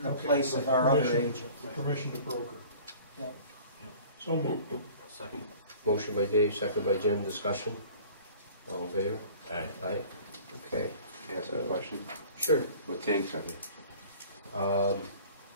the Okay, place of our other agent. Permission to broker. Yep. So moved. Second. motion by Dave, second by Jim, discussion. All in favor? Aye. Aye. Okay, Ask a question. sure. What tanks are they?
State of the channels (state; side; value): inverted; both; correlation -0.46